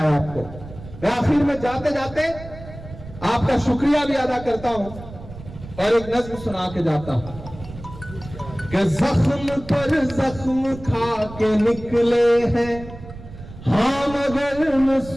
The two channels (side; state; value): right; noise; rumble, 15 dB below the sound